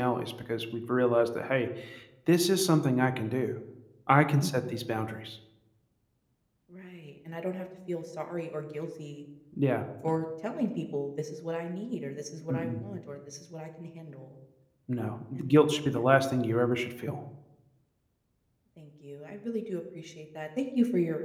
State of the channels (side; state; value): both; identical; correlation 1.00